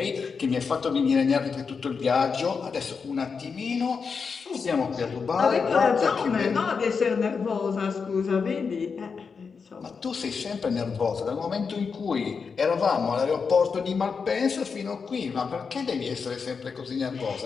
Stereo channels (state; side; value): quieter; right; 5.5 dB